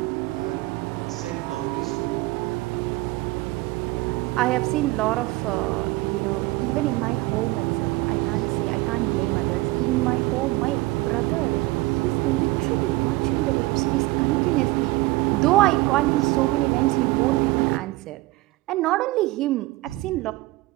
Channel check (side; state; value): left; quieter; 20.4 dB